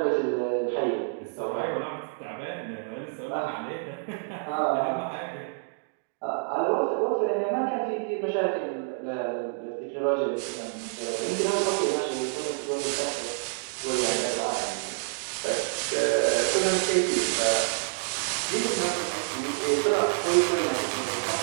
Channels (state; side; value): silent; left; digital silence